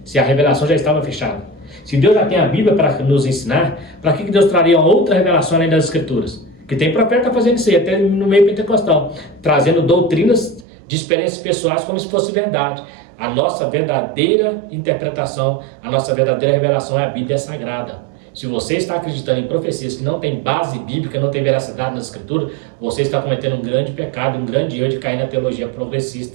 Se a revelação já estava fechada. Se Deus já tem a Bíblia para nos ensinar, para que Deus traria uma outra revelação além das Escrituras? Que tem profeta fazendo isso aí, até no meio pentecostal, trazendo doutrinas de experiências pessoais como se fosse verdade. A nossa verdadeira interpretação, a nossa verdadeira revelação é a Bíblia Sagrada. Se você está acreditando em profecias que não tem base bíblica, não tem veracidade nas escrituras, você está cometendo um grande pecado, um grande erro de cair na teologia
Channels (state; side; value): drops out; left; at 10.7 s